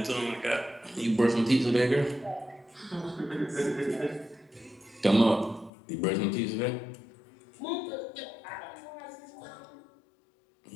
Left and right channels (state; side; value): drops out; right; at 5.7 s